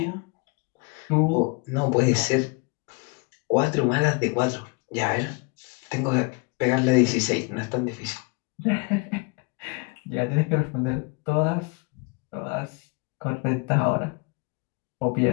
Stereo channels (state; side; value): quieter; right; 30.3 dB